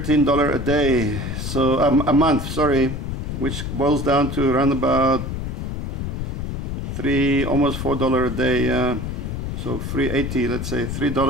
a day, so a month, sorry, which boils down to around about almost $4 a day. So $3.80, let's say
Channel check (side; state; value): left; noise; rumble, 4 dB below the sound